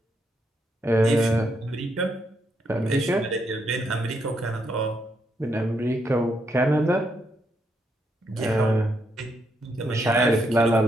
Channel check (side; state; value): both; normal; correlation 0.78